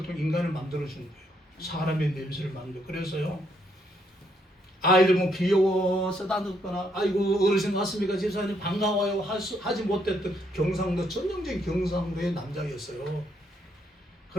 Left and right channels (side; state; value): both; normal; correlation 0.73